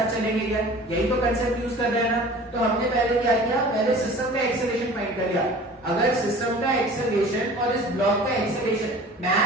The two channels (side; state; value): both; normal; correlation 0.43